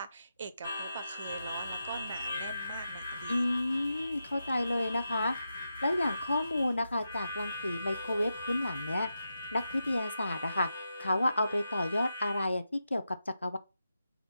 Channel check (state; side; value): inverted; both; correlation -0.88